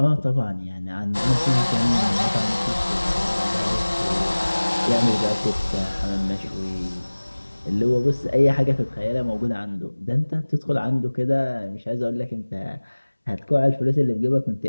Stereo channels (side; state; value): both; inverted; correlation -1.00